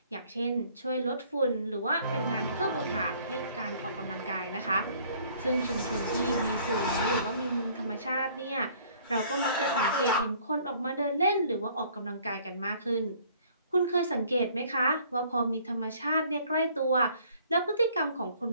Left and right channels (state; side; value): inverted; both; correlation -0.58